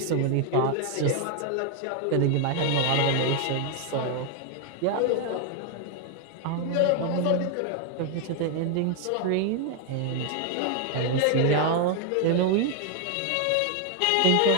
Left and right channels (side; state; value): both; different; correlation 0.01